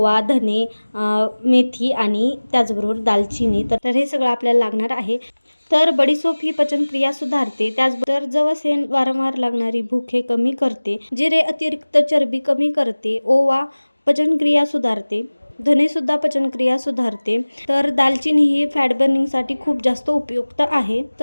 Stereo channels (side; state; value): both; inverted; correlation -1.00